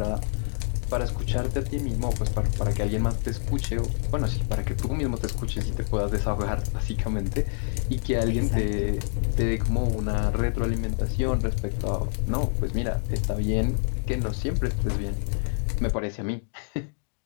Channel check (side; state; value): right; silent; digital silence